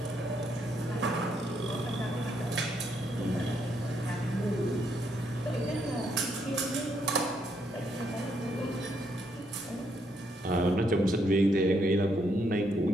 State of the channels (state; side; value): normal; both; correlation 0.75